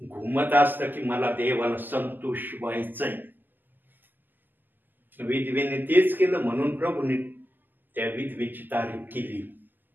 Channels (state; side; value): late; left; 0.088 ms